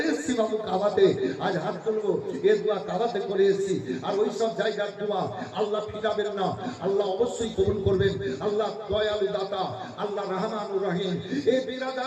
এসেছি বাবু কাবাতে, আজ হাত তুলবো, এই দোয়া কাবাতে করে এসেছি। আর ওই সব জায়গার দোয়া আল্লাহ ফিরাবেন না, আল্লাহ অবশ্যই কবুল করবেন। আল্লাহ দয়ালু দাতা, আল্লাহ রহমানুর রহিম। এই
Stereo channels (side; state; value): both; identical; correlation 1.00